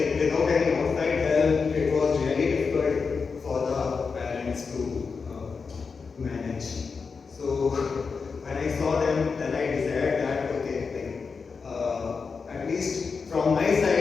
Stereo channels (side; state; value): right; quieter; 5.1 dB